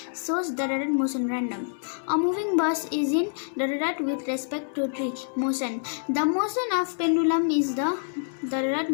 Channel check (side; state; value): right; silent; digital silence